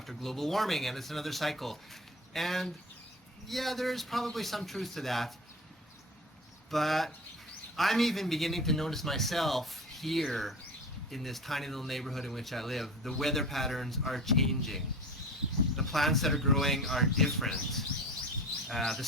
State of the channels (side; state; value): both; normal; correlation 0.33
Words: global warming, and it's another cycle. And yeah, there's probably some truth to that. But I'm even beginning to notice myself here in this tiny little neighborhood in which I live. The weather patterns are changing. The plants that are growing are different. The